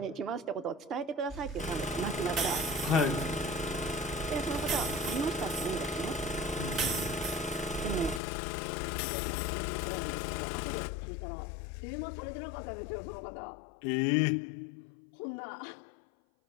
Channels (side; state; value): right; drops out; at 8.2 s